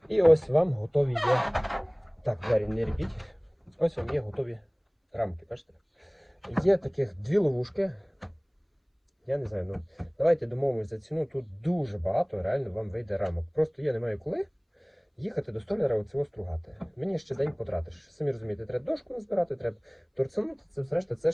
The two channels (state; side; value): identical; both; correlation 1.00